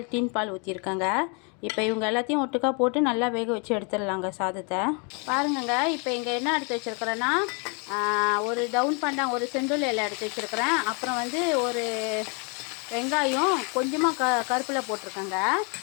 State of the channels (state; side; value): quieter; right; 35.4 dB